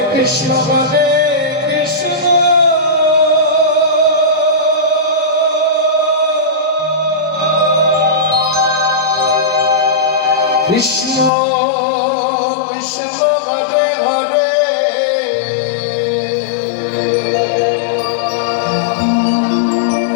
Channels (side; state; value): right; drops out; at 11.3 s